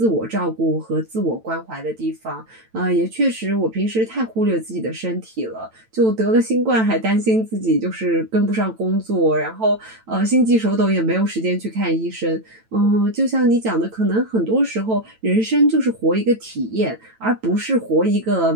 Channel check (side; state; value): left; late; 9.0 ms